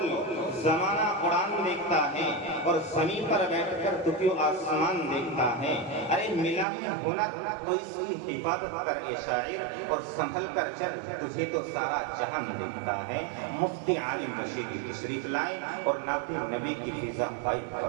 زمانہ اڑان دیکھتا ہے اور زمین پر بیٹھ کر تو کیوں آسمان دیکھتا ہے۔ ارے ملا ہے ہنر تو اس کی حفاظت کر اے شاعر، اور سنبھل کر چل تجھے تو سارا جہان دیکھتا ہے۔ مفتی عالم رشیدی تشریف لائیں اور نعت نبی کی فضا قائم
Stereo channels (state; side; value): drops out; left; at 6.7 s